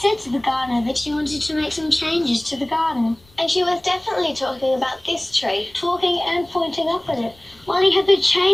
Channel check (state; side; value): noise; left; rumble, 29 dB below the sound